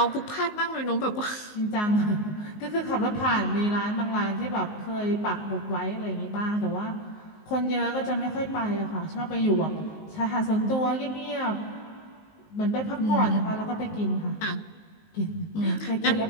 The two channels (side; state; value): right; late; 19 ms